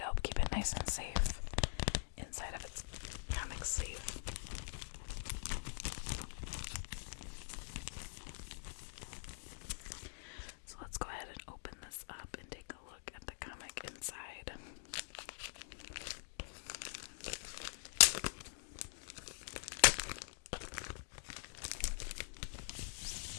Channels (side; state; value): right; silent; digital silence